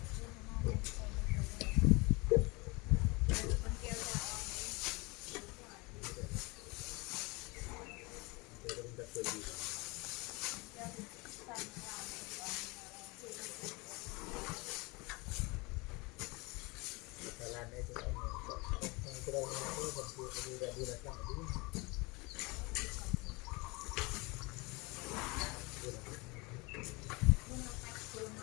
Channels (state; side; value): quieter; right; 26.2 dB